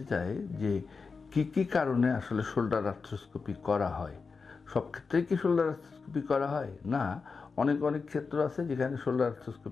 চায় যে কি কারণে আসলে শোল্ডার আর্থ্রোস্কোপি করা হয়। সব ক্ষেত্রে কি শোল্ডার আর্থ্রোস্কোপি করা হয় না, অনেক ক্ষেত্র আছে যেখানে শোল্ডার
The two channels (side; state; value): right; quieter; 4.8 dB